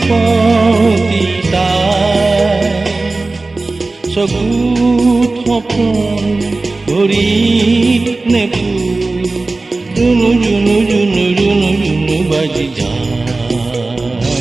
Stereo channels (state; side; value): quieter; left; 3.3 dB